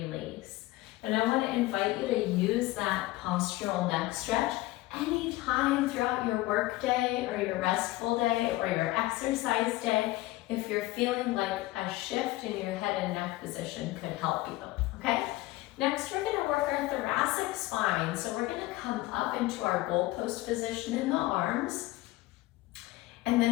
And I want to invite you to use that postural neck stretch anytime throughout your work day or your restful day or your exercise day. If you're feeling like a shift in your head and neck position could help you, okay? Next, we're gonna work our thoracic spine. So we're gonna come up into our goalpost position in the arms. And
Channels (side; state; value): right; quieter; 18.5 dB